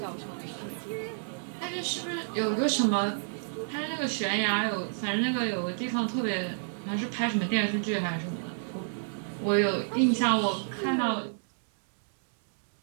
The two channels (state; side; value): silent; left; digital silence